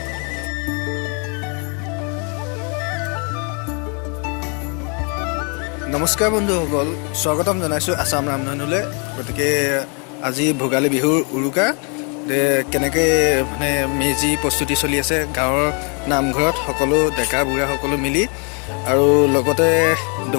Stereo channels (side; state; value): right; quieter; 36.7 dB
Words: নমস্কাৰ বন্ধুসকল, স্বাগতম জনাইছোঁ আসাম ৰামধেনুলৈ। গতিকে আজি ভোগালী বিহুৰ উৰুকা কেনেকৈ মানে মেজি প্ৰস্তুতি চলি আছে গাঁৱৰ নামঘৰত সকলো ডেকা বুঢ়া সকলো মিলি, আৰু লগতে